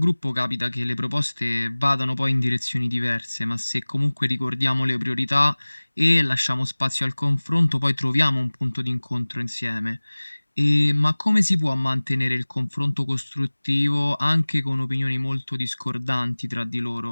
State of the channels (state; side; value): inverted; both; correlation -1.00